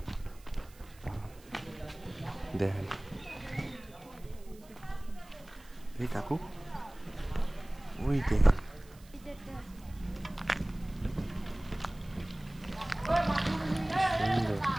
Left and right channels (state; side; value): noise; right; hiss, 25 dB below the sound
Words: দেখেন এই কাকু, ওই দেখেন